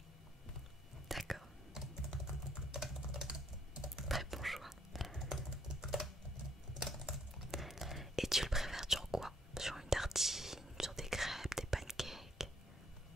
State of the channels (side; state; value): both; normal; correlation 0.68